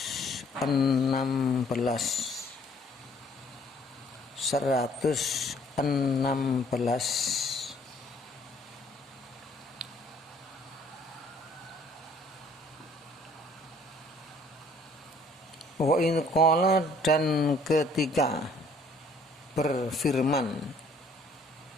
Wa in qala, dan ketika berfirman.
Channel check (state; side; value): normal; both; correlation 0.59